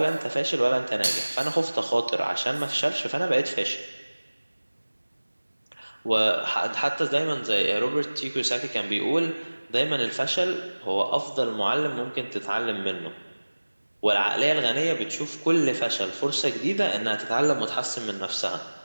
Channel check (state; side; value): inverted; both; correlation -1.00